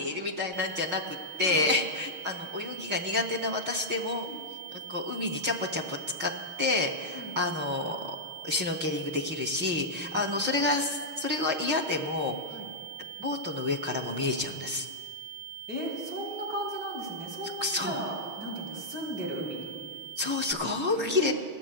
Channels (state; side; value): late; left; 6.3 ms